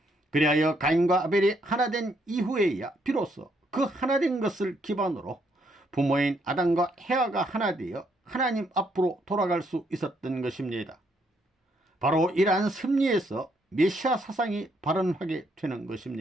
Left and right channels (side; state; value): both; normal; correlation 0.73